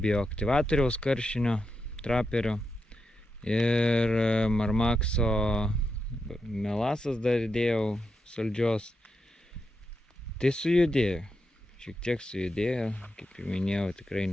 karšinio, traperio ir Marmaxo melasas dar dėjau saldžios. Tai sujudėjo, šiek tiek sujudėjo, kaip jau minėjau, tikrai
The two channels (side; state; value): both; normal; correlation 0.85